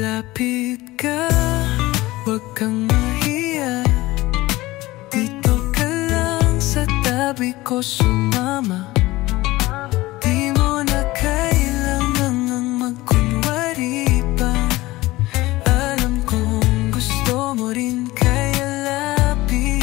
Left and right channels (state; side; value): quieter; right; 18.9 dB